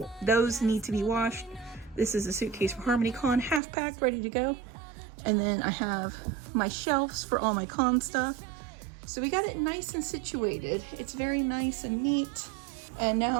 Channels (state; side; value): drops out; left; at 3.6 s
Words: to be washed. This is a suitcase for harmonycon, half packed, ready to go. And then I have my shelves for all my con stuff. So we got it nice and situated. It's very nice and neat. And